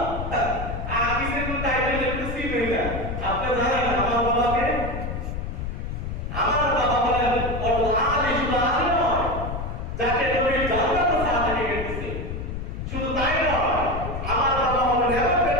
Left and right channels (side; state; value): left; noise; rumble, 5 dB below the sound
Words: আমি সেটা টাইটেল লিখতেছি না। আপনি জানেন আমার বাবাকে? আমার বাবা বলেন আলিফুল আলিম, যাকে নবী জান্নাত সার্টিফিকেট দিয়েছে। শুধু তাই নয়, আমার বাবা হলেন এমন